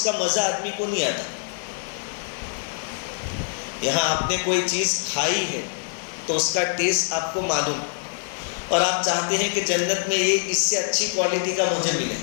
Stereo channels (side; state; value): right; silent; digital silence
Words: کا مزہ آدمی کو نہیں آتا۔ یہاں آپ نے کوئی چیز کھائی ہے تو اس کا ٹیسٹ آپ کو معلوم، اور آپ چاہتے ہیں کہ جنت میں یہ اس سے اچھی کوالٹی کا مجھے ملے۔